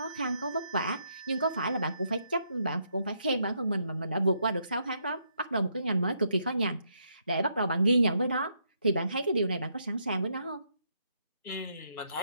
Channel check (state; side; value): inverted; both; correlation -0.75